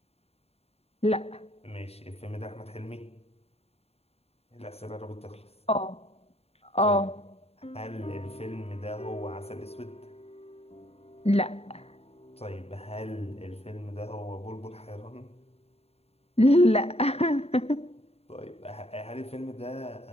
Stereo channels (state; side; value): late; right; 0.30 ms